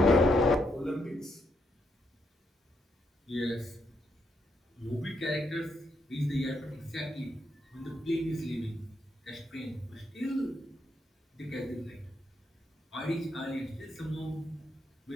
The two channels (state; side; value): normal; both; correlation 0.78